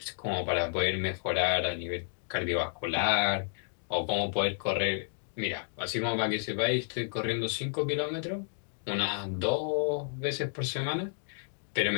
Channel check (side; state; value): right; silent; digital silence